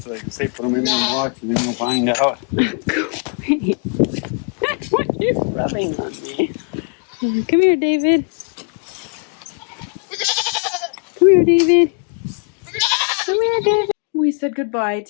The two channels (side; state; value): right; quieter; 38.2 dB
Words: they can say put them in there and watch and then we'll find out. Go away. What are you rubbing on me? Come here, David. Come here, David. Come here, David. We said goodbye